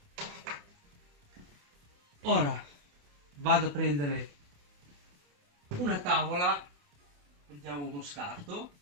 Ora vado a prendere una tavola, prendiamo uno scarto,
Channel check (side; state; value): left; late; 28 ms